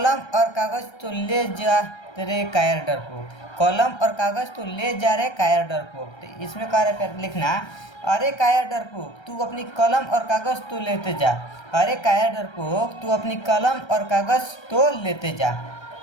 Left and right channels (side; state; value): right; late; 1.3 ms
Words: और कागज तो ले जा तेरे कायर डरपोक। कलम और कागज तो ले जा रहे कायर डरपोक। तो इसमें कह रहे प्यारे लिखना, अरे कायर डरपोक तू अपनी कलम और कागज तो लेते जा। अरे कायर डरपोक तू अपनी कलम और कागज तो लेते जा।